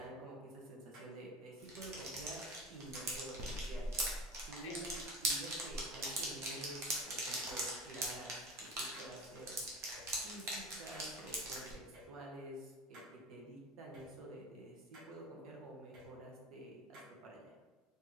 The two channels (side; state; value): both; normal; correlation 0.32